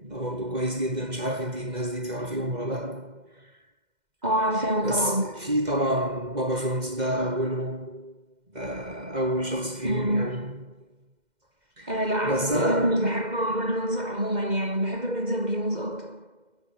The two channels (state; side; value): late; left; 2.1 ms